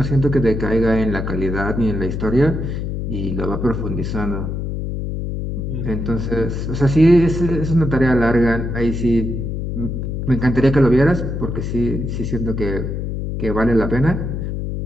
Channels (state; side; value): noise; left; hum, 3 dB below the sound